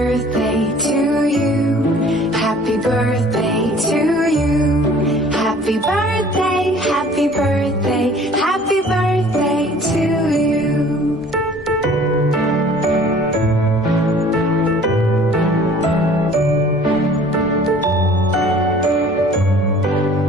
to you. Happy birthday to you. Happy birthday, happy birthday, happy birthday to you.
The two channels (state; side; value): normal; both; correlation 0.51